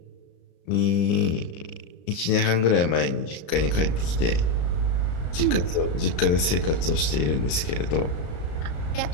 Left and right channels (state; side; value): late; right; 35 ms